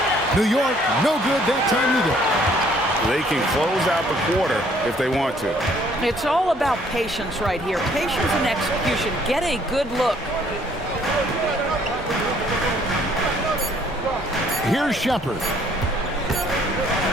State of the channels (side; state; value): both; normal; correlation 0.62